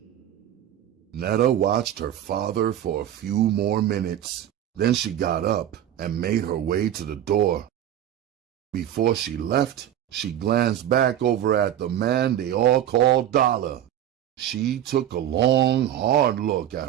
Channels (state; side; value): quieter; left; 11.2 dB